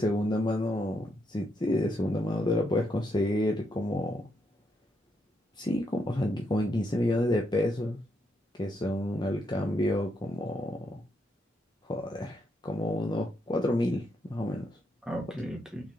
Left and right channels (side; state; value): both; normal; correlation 0.78